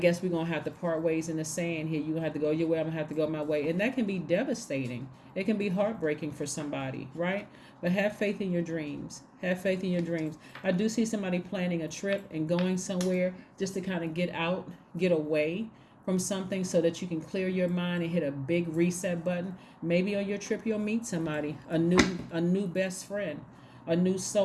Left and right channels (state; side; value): identical; both; correlation 1.00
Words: we're going to have to part ways in the sand here. You're going to have to go your way. I'm going to have to go my way. And that can be devastating. It can be heartbreaking for somebody, right? But have faith in your dreams. Have faith in your dreams. I do see somebody planning a trip and going somewhere just to kind of get out, get away from something so that you can clear your mind and hit a big reset button. Maybe on your trip you'll meet somebody, a new best friend, a new